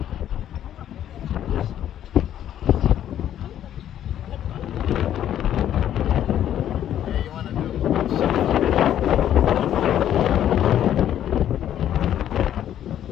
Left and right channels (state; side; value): quieter; right; 10.9 dB